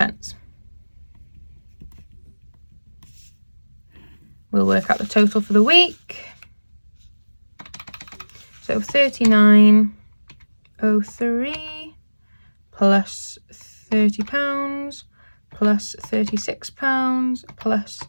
We'll work out the total for the week. So £39.03 plus £30 plus £36 plus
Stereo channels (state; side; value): inverted; both; correlation -1.00